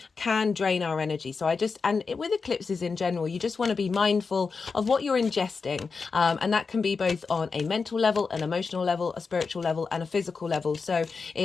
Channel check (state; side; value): quieter; right; 4.8 dB